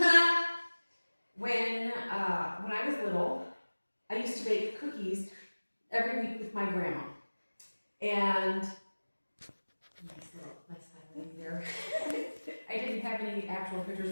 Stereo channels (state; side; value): inverted; both; correlation -1.00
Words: when I was little, I used to bake cookies every week with my grandma. And nice little there. I didn't have any actual pictures